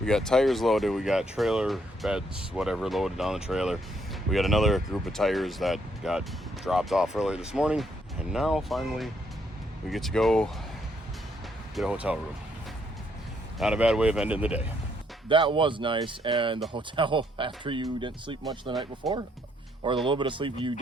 got tires loaded, we got trailer beds, whatever, loaded on the trailer. We got another group of tires that got dropped off earlier this morning. And now, finally, we get to go get a hotel room. Not a bad way of ending the day. That was nice, and the hotel, after you didn't sleep much the night before, or the little bit of sleep you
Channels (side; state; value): both; normal; correlation 0.72